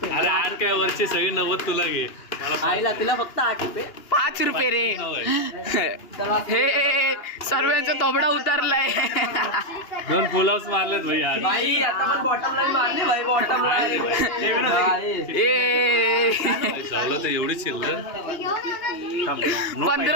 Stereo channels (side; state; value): right; late; 2.9 ms